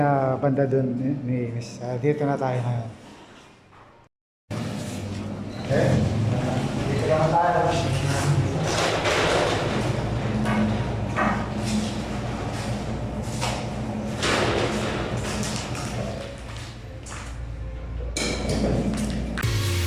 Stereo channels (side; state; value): both; identical; correlation 1.00